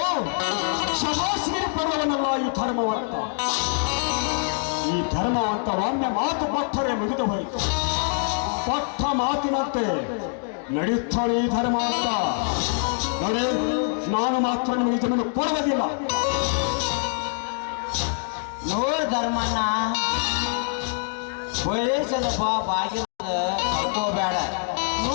ಶಬಾಸಿಗೆ ಪಡುವವನಲ್ಲ ಈ ಧರ್ಮವಂತ. ಈ ಧರ್ಮವಂತ ಒಮ್ಮೆ ಮಾತು ಕೊಟ್ಟರೆ ಮುಗಿದು ಹೋಯಿತು. ಕೊಟ್ಟ ಮಾತಿನಂತೆ ನಡೆಯುತ್ತಾನೆ ಈ ಧರ್ಮವಂತ. ನೋಡಿ, ನಾನು ಮಾತ್ರ ನಿಮಗೆ ಜಮೀನು ಕೊಡುವುದಿಲ್ಲ. ನೋಡ್ ಧರ್ಮಣ್ಣ, ವಯಸ್ಸದ ಬಾಗಿಲ ಕಳ್ಕೋಬೇಡ.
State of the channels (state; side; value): silent; right; 62 dB below the other